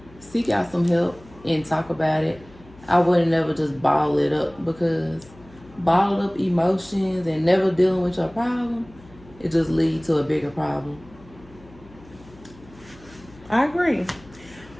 seek out some help and talk about it. I wouldn't never just bottle it up, because bottled up emotions and never dealing with your problem, it just leads to a bigger problem. I agree,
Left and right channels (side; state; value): left; noise; hum, 23 dB below the sound